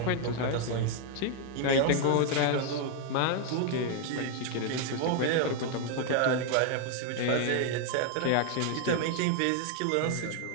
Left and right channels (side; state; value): both; different; correlation 0.00